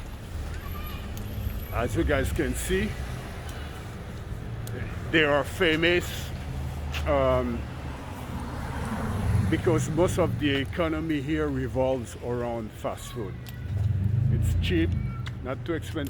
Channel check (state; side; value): identical; both; correlation 1.00